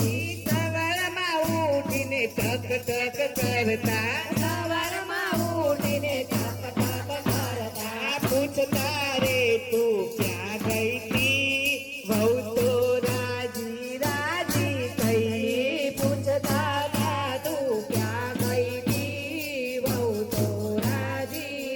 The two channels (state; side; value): identical; both; correlation 1.00